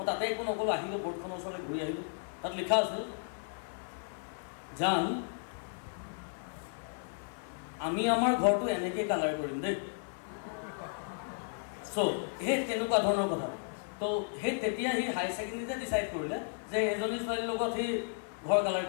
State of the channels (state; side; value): silent; right; 55 dB below the other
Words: তাতে একো নক'লোঁ, আহিলোঁ বৰ্ডখনৰ ওচৰলৈ ঘূৰি আহিলোঁ। তাত লিখা আছিল, জান আমি আমাৰ ঘৰটো এনেকৈ কালাৰ কৰিম দেই। চ' সেই তেনেকুৱা ধৰণৰ কথা। তো সেই তেতিয়া সি হায়াৰ ছেকেণ্ডেৰীতে ডিচাইড কৰিলে যে এজনী ছোৱালীৰ লগত সি ঘৰ কালাৰ